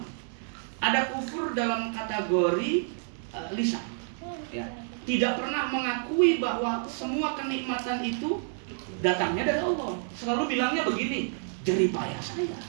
Ada kufur dalam kategori lisan. Ya. Tidak pernah mengakui bahwa semua kenikmatan itu datangnya dari Allah. Selalu bilangnya begini, jerih payah saya,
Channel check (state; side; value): silent; left; digital silence